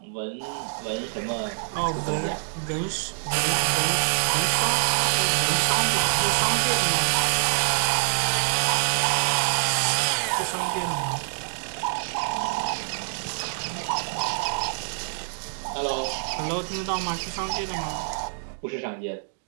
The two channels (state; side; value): silent; left; digital silence